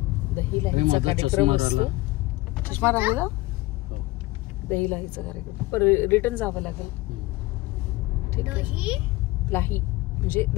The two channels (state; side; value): quieter; right; 19.8 dB